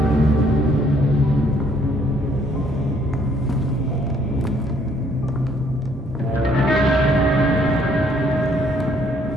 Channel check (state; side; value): normal; both; correlation 0.65